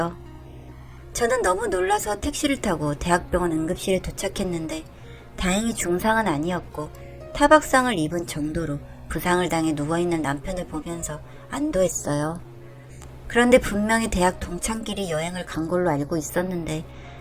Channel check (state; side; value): identical; both; correlation 1.00